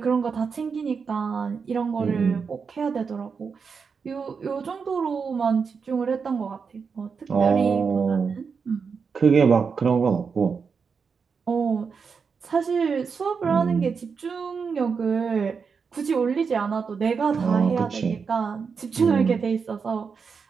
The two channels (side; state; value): left; quieter; 5.7 dB